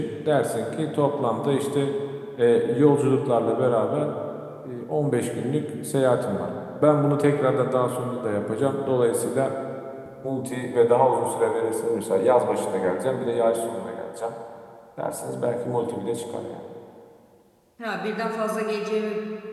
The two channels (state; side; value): identical; both; correlation 1.00